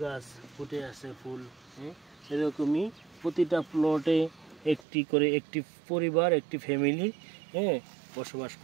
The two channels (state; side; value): drops out; left; at 4.9 s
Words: গাছ ফুটে আছে, ফুল। এরকমই প্রতিটা প্লটে একটি করে একটি পরিবার, একটি ফ্যামিলি বসবাস